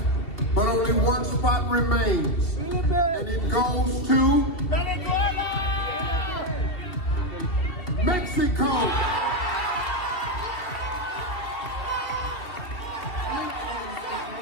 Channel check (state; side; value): late; right; 2.7 ms